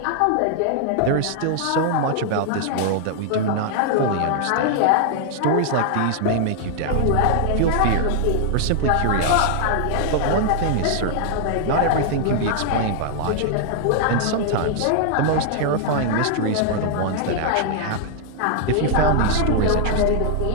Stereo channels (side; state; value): both; different; correlation -0.01